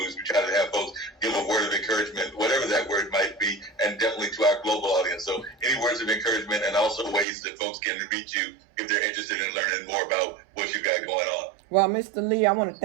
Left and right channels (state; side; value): drops out; left; at 7.2 s